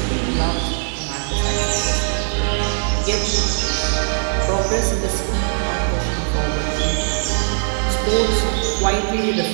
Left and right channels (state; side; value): silent; left; digital silence